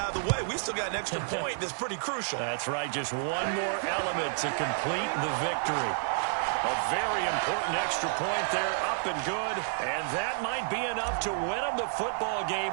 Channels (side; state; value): left; silent; 58 dB below the other